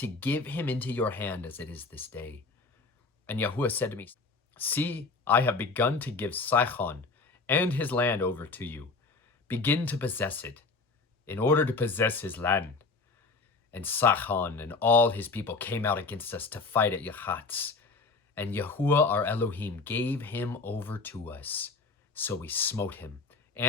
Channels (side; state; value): right; quieter; 4.0 dB